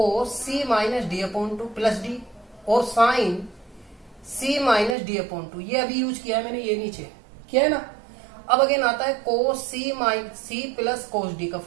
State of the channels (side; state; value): left; drops out; at 5.0 s